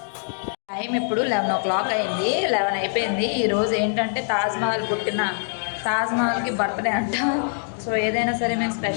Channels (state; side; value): silent; right; digital silence